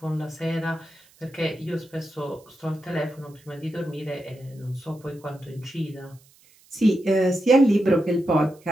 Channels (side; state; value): right; noise; hiss, 29 dB below the sound